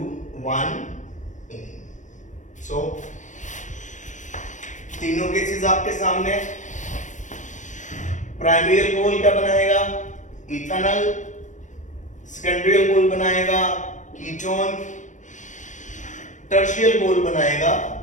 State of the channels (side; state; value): right; late; 0.36 ms